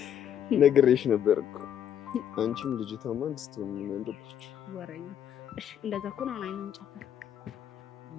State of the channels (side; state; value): right; quieter; 9.5 dB